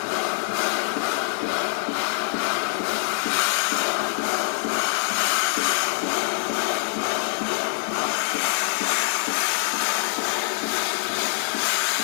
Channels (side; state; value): right; silent; digital silence